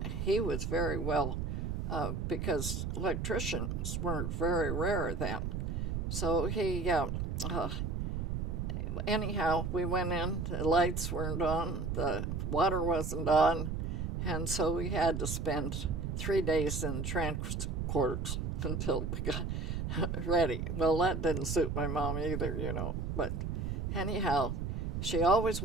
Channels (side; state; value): right; noise; rumble, 2 dB below the sound